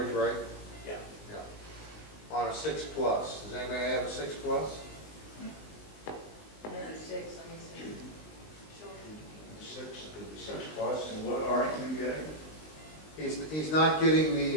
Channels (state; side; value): late; right; 19 ms